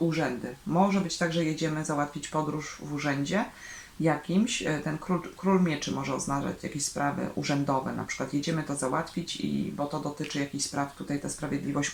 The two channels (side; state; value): both; identical; correlation 1.00